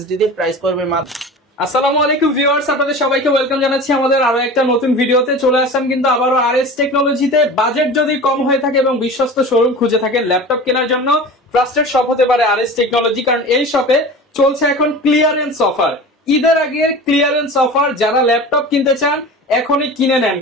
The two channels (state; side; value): normal; both; correlation 0.35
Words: দিয়ে প্রাইস পড়বে মাত্র। আসসালামু আলাইকুম ভিউয়ার্স, আপনাদের সবাইকে ওয়েলকাম জানাচ্ছি আমাদের আরো একটা নতুন ভিডিওতে। চলে আসলাম কিন্তু আবারও RS টেকনোলজিতে। বাজেট যদি কম হয়ে থাকে এবং বিশ্বস্ত শোরুম খুঁজে থাকে ল্যাপটপ কেনার জন্য, ট্রাস্টেড শপ হতে পারে RS টেকনোলজি, কারণ এই শপে চলছে এখন ক্লিয়ারেন্স অফার, ঈদের আগের ক্লিয়ারেন্স অফার। যারা ল্যাপটপ কিনতে চান এখনই কিনে নেন,